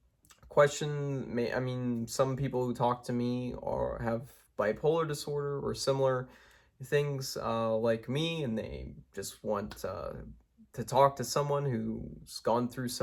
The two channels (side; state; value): both; identical; correlation 1.00